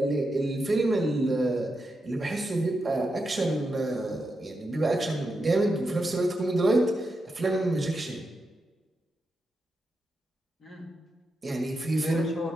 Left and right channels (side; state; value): both; normal; correlation 0.86